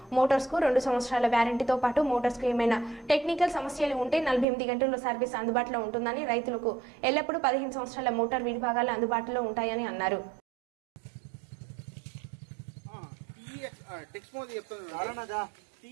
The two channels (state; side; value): drops out; left; at 4.5 s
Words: మోటార్స్ కు 2 సంవత్సరాల వ్యారంటీతో పాటు మోటార్స్ కు ఏమైనా టెక్నికల్ సమస్యలు ఉంటే 48 గంటల్లో సర్వీస్ అందుబాటులో ఉంటుందని, రైతులకు ఎల్లప్పుడూ 15 సంవత్సరాల మోటార్ విడిభాగాలు అందుబాటులో ఉంటాయని అన్నారు. టెక్స్మో చెప్తున్నాను.